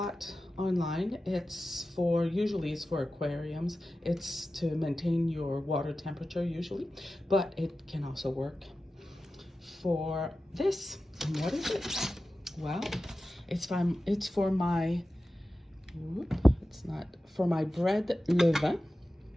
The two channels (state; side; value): normal; both; correlation 0.94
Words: online. Usually it's for aquariums. It's to maintain your water temperature usually, but it can also work for this. And what is it? Well, it's for my bread levain,